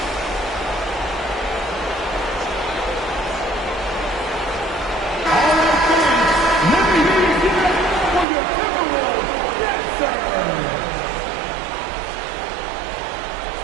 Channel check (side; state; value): left; drops out; at 8.2 s